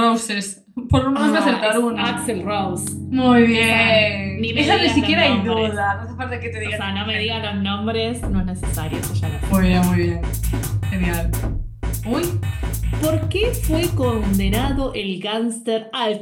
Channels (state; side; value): identical; both; correlation 1.00